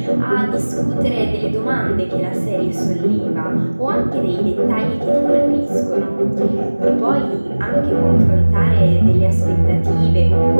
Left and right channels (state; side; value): inverted; both; correlation -1.00